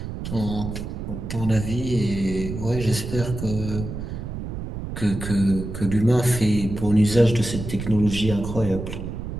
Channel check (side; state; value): right; noise; rumble, 7 dB below the sound